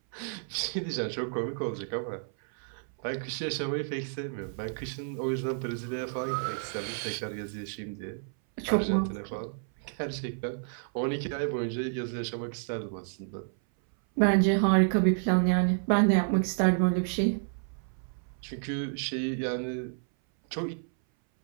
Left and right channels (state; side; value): silent; left; 58 dB below the other